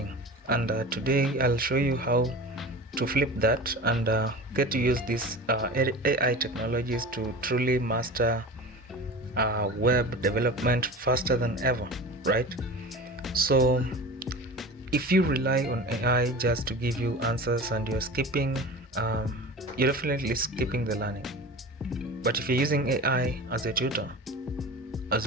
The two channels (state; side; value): normal; both; correlation 0.34